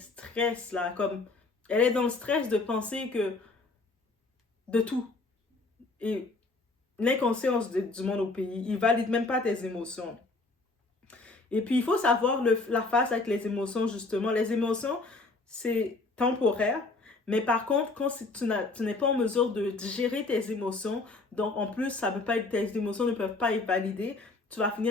là, comme elle est dans le stress de penser que de tout. Et l'inconscience du monde au pays, il valide même pas tes émotions. Et puis, il faut savoir la face avec les émotions, justement. Les émotions, c'est temporaire. Mais par contre, quand tu n'es pas en mesure de gérer tes émotions, donc en plus, tes émotions ne peuvent pas être validées, tu vas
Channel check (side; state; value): right; quieter; 3.5 dB